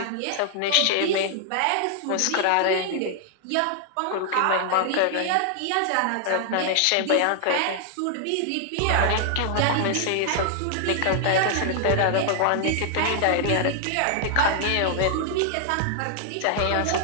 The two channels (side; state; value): both; different; correlation 0.00